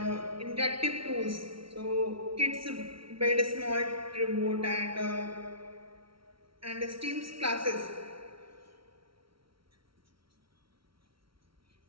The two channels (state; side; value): late; left; 0.74 ms